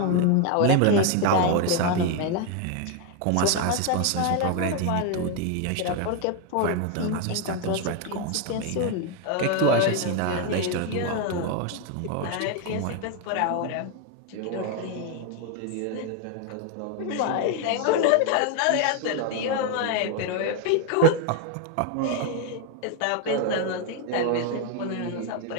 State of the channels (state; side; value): different; both; correlation 0.01